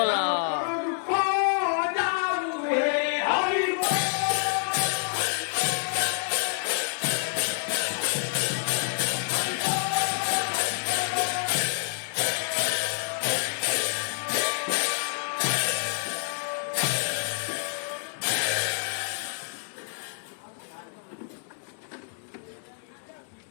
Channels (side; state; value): right; silent; digital silence